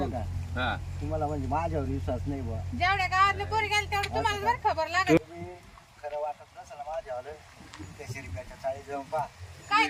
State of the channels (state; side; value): identical; both; correlation 1.00